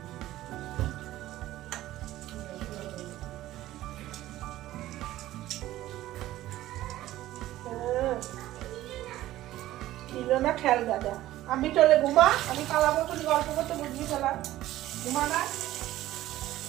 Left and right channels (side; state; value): left; quieter; 14.9 dB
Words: না খেয়াল দাদা, আমি চলে ঘুমা, আমি পালাবো, তুমি গল্প করতে বুঝবি ফেলা। ঘুমা না,